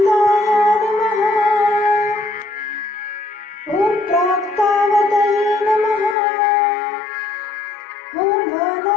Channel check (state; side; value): drops out; right; at 6.2 s